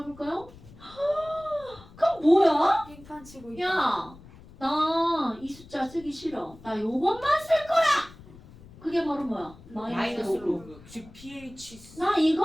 그럼 뭐야? 빙판 치고 야, 나 이 숫자 쓰기 싫어. 나 요것만 쓸 거야. 그게 바로 뭐야? 마이너스 로그. 로그 즉 pH 나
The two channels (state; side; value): noise; left; rumble, 21 dB below the sound